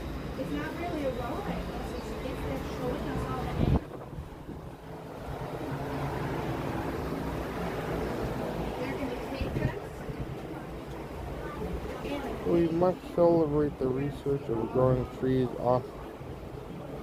it's not really a ride. It's just showing us all the animals. They're going to take us. We must celebrate the research of growing trees off.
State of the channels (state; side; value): identical; both; correlation 1.00